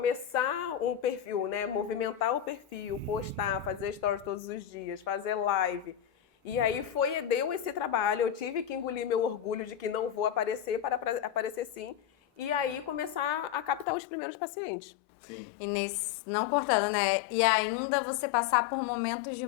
um perfil, né? Movimentar o perfil, postar, fazer stories todos os dias, fazer live. E aí deu esse trabalho, eu tive que engolir meu orgulho de que não vou aparecer para aparecer sim. E aí começar a captar os primeiros pacientes. Sim. E não cortando, né? E ainda você passar por momentos de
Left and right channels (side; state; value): right; drops out; at 13.9 s